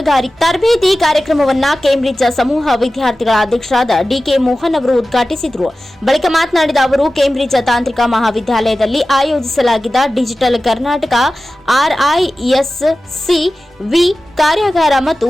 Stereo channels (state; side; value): normal; both; correlation 0.95